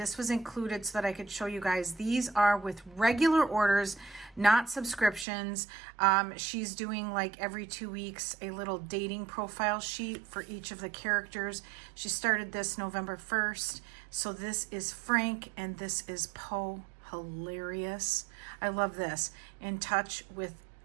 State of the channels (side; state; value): left; drops out; at 5.2 s